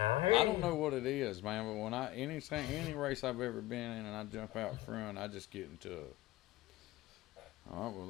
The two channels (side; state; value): right; quieter; 17.4 dB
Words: I don't know what it is, man, but when any race I've ever been in and I jump out front, I just get into all right, well,